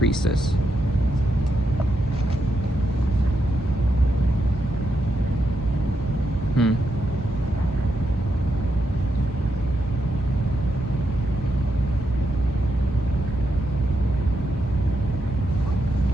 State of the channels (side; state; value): both; normal; correlation 0.83